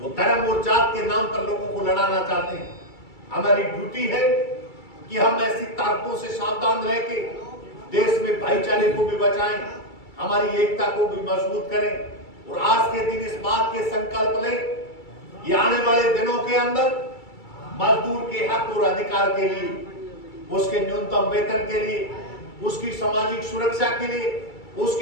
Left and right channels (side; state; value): right; late; 2.3 ms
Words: धर्म और जात के नाम पर लोगों को लड़ाना चाहते हैं। हमारी ड्यूटी है कि हम ऐसी ताकतों से सावधान रह के देश में भाईचारे को भी बचाएं, हमारी एकता को भी मजबूत करें। और आज के दिन इस बात के संकल्प लें कि आने वाले दिनों के अंदर मजदूर के हक और अधिकार के लिए, उसके न्यूनतम वेतन के लिए, उसकी सामाजिक सुरक्षा के लिए,